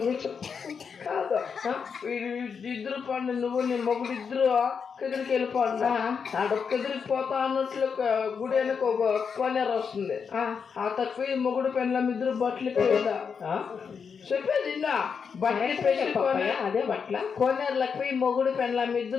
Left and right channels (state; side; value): quieter; right; 6.2 dB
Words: చెప్పు. కాదు ఇద్దరు పండు నువ్వు నీ మొగుడు ఇద్దరు కదిరికి వెళ్ళిపోండి. కదిరికి పోతా అన్నట్లు గుడి వెనక ఒక కోనేరు వస్తుంది. ఆ తక్కువ మొగుడు పెండ్లం ఇద్దరు బట్టలు పోయిందా చెప్పేది ఇన్నా బట్టలు పెట్టి అదే బట్ల కోనేరులకు పోయి మొగుడు పెండ్లం